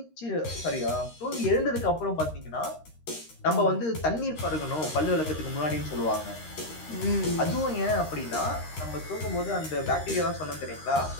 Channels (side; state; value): right; late; 13 ms